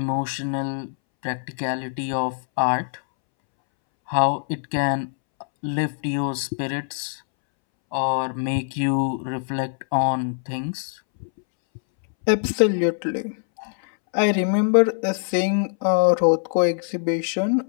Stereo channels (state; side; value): silent; right; 63 dB below the other